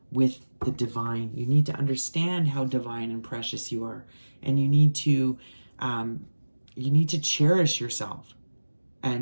with the divine. You need to understand how divine and precious you are. And you need to cherish yourself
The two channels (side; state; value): both; inverted; correlation -1.00